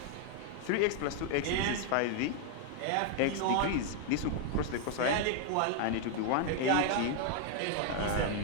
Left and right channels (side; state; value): both; different; correlation 0.00